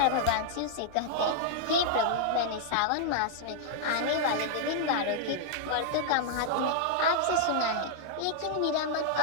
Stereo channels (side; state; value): both; different; correlation -0.01